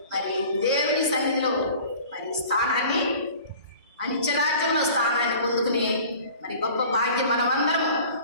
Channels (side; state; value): both; inverted; correlation -0.45